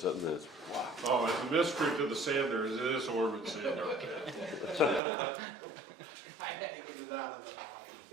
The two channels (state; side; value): drops out; left; at 5.0 s